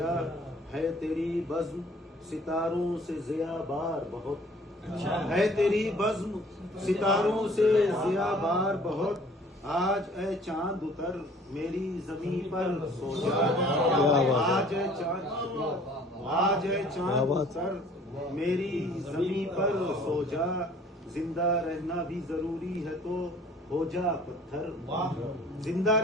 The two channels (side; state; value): both; normal; correlation 0.53